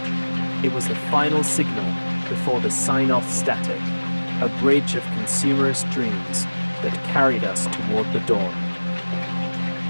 It was the final signal before the sign-off static, a bridge of consumerist dreams that carried us toward the dawn.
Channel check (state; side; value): inverted; both; correlation -1.00